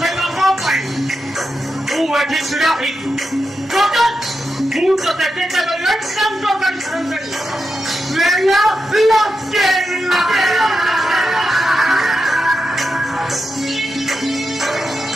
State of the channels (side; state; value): both; normal; correlation 0.88